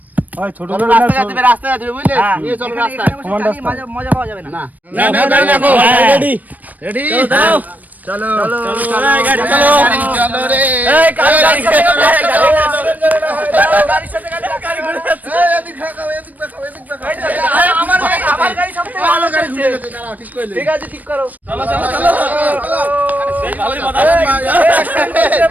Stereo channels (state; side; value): late; left; 0.080 ms